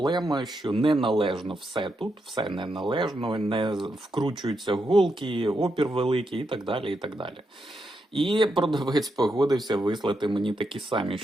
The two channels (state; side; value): normal; both; correlation 0.83